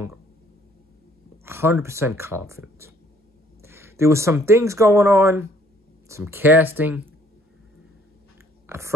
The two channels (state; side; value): normal; both; correlation 0.61